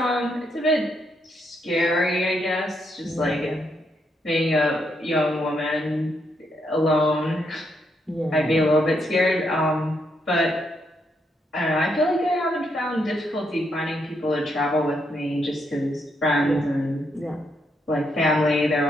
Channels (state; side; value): normal; both; correlation 0.78